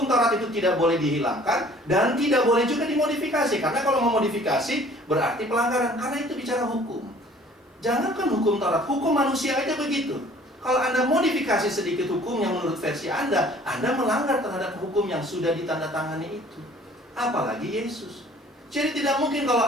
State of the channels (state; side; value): normal; both; correlation 0.53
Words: Taurat itu tidak boleh dihilangkan dan tidak boleh juga dimodifikasi. Karena kalau memodifikasi berarti pelanggaran, karena itu bicara hukum. Jangankan hukum Taurat, hukum manusia aja begitu. Kalau Anda modifikasi sedikit hukum yang menurut versi Anda melanggar terhadap hukum yang sudah ditandatangani itu. Apalagi Yesus. Jadi tidak mungkin kalau